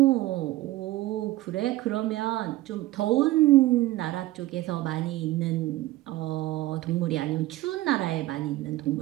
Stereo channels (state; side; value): quieter; left; 17.1 dB